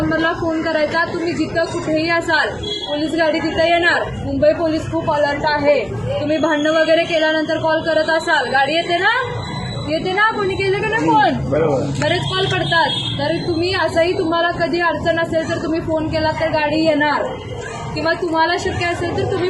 फोन करायचा. तुम्ही जिथं कुठेही असाल पोलीस गाडी तिथं येणार. मुंबई पोलीस खूप अलर्ट आहे. तुम्ही भांडणं वगैरे केल्यानंतर कॉल करत असाल, गाडी येते ना कोणी केलं का नाही फोन, बरेच कॉल करतात. तर तुम्ही असंही तुम्हाला कधी अडचण असेल तर तुम्ही फोन केला तर गाडी येणार, किंवा तुम्हाला शक्य असेल तर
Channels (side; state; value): right; noise; rumble, 27 dB below the sound